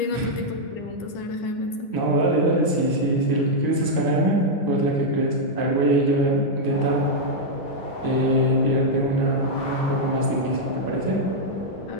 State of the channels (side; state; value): right; late; 10 ms